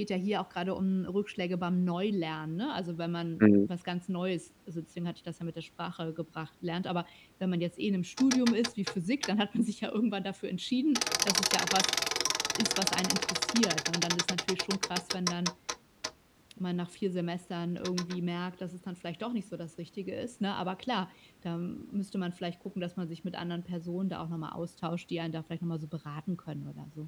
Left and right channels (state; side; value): identical; both; correlation 1.00